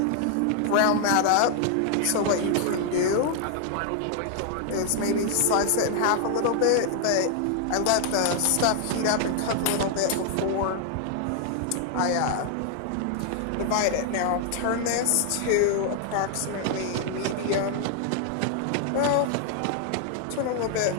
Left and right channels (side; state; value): both; different; correlation 0.00